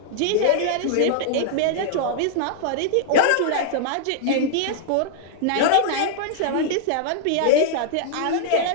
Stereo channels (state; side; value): different; both; correlation -0.01